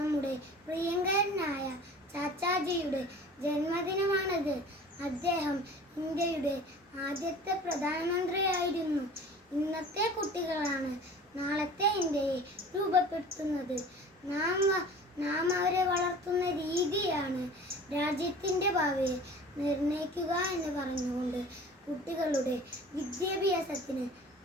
പ്രിയങ്കരനായ ചാച്ചാജിയുടെ ജന്മദിനമാണിത്. അദ്ദേഹം ഇന്ത്യയുടെ ആദ്യത്തെ പ്രധാനമന്ത്രിയായിരുന്നു. ഇന്നത്തെ കുട്ടികളാണ് നാളത്തെ ഇന്ത്യയെ രൂപപ്പെടുത്തുന്നത്. നാം അവരെ വളർത്തുന്ന രീതിയാണ് രാജ്യത്തിൻ്റെ ഭാവിയെ നിർണ്ണയിക്കുക എന്ന് പറഞ്ഞുകൊണ്ട് കുട്ടികളുടെ വിദ്യാഭ്യാസത്തിന്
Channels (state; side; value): normal; both; correlation 0.43